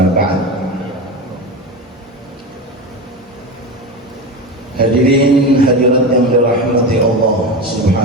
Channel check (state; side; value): normal; both; correlation 0.22